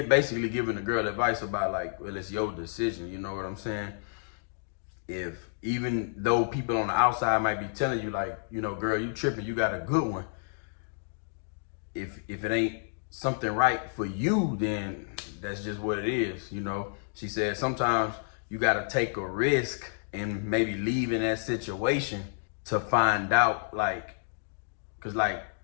giving the girl advice about like, well, it's your decision, you know what I'm saying? If even though people on the outside might be telling you like, you know, girl, you tripping, you got a good one. If it ain't something right for you, then that's just what it is, you know. She said sometimes you got to take a risk and maybe leave in that situation to find out, like, because like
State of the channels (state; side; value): silent; right; digital silence